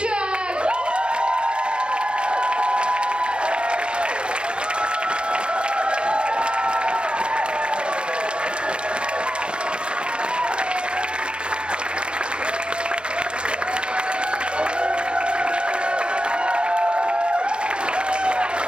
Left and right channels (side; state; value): left; late; 0.054 ms